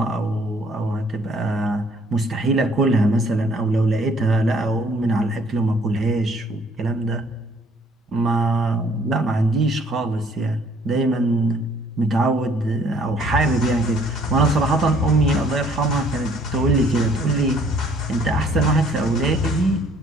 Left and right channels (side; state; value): both; normal; correlation 0.60